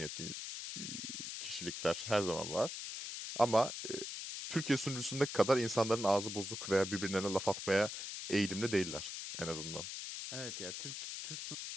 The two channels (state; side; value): noise; left; hiss, 6 dB below the sound